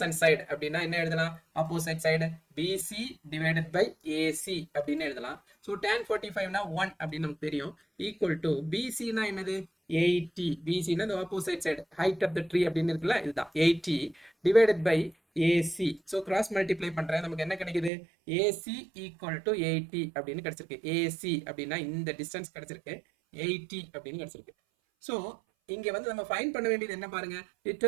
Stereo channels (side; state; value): left; drops out; at 17.9 s